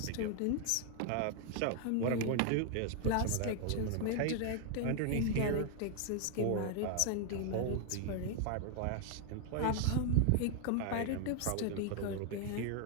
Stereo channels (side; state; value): both; different; correlation 0.00